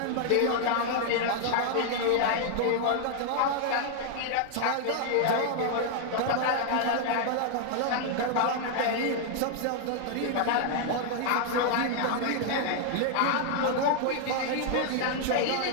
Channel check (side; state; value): both; different; correlation 0.00